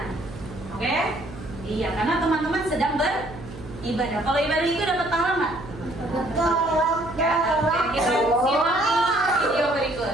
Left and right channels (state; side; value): noise; right; hum, 15 dB below the sound